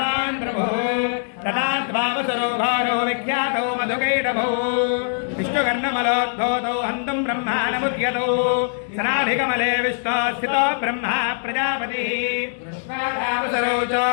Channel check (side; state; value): right; silent; digital silence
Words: प्रभुः तदाद्भावसरो भारो विख्यातो मधुकैटभौ विष्णुकर्णमलोद्भूतौ हन्तुं ब्रह्माणमुद्यतौ सनाभिकमले विष्णो स्थितो ब्रह्मा प्रजापतिः कृष्णावसरो